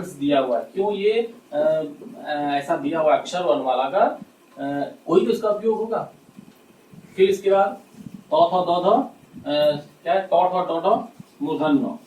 दिया हुआ है, क्यों ये ऐसा दिया हुआ अक्षर वर्णमाला का? कोई तो इसका उपयोग होगा। फिर इसके बाद त थ द ध क्या है, ट ठ ट ठ मूर्धन्य,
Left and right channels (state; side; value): identical; both; correlation 1.00